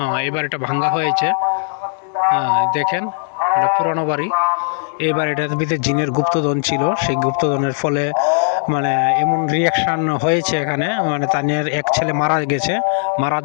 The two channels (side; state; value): right; silent; digital silence